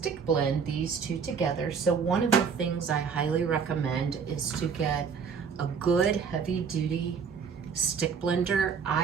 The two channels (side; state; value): left; quieter; 6.2 dB